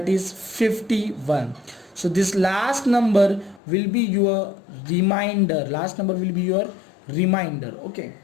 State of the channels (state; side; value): drops out; right; at 3.6 s